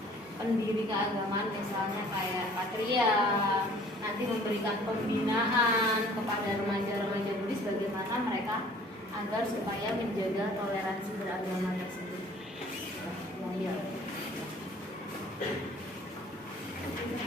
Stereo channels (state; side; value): normal; both; correlation 0.52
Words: pendiri keagamaan misalnya kayak Patria nanti memberikan pembinaan kepada remaja-remaja Buddhis bagaimana mereka agar supaya menjaga toleransi beragama tersebut. Ya.